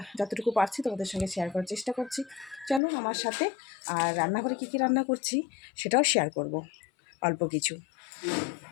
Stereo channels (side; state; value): right; drops out; at 2.8 s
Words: যতটুকু পারছি তোমাদের সঙ্গে শেয়ার করার চেষ্টা করছি। চলো আমার সাথে। আর রান্নাঘরে কী রান্না করছি সেটাও শেয়ার করব অল্প কিছু।